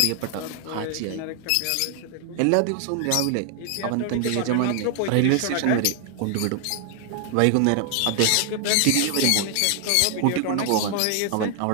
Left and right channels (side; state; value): both; different; correlation 0.00